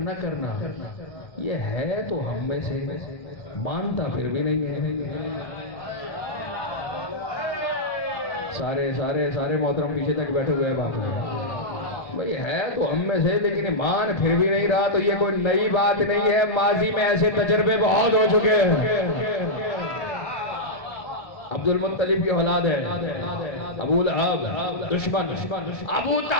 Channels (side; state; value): right; late; 1.3 ms